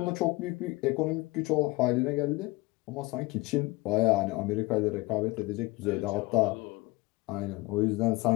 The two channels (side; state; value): right; quieter; 22.5 dB